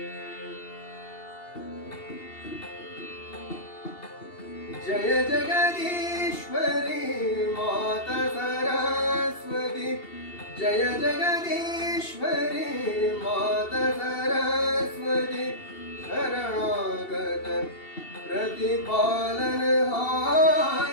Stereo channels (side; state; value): right; late; 2.8 ms